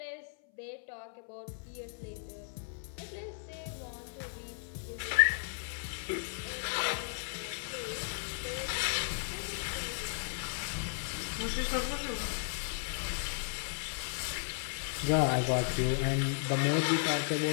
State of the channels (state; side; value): silent; right; 54 dB below the other